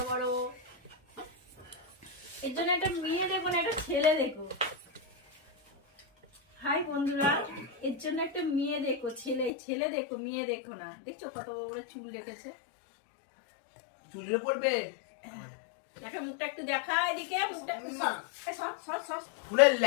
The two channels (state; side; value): drops out; right; at 9.5 s